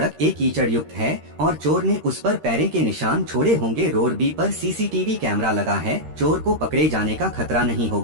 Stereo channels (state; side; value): late; left; 13 ms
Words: ए कीचड़ युक्त है और चोर ने उस पर पैरे के निशान छोड़े होंगे। रोड बी पर सीसीटीवी कैमरा लगा है। चोर को पकड़े जाने का खतरा नहीं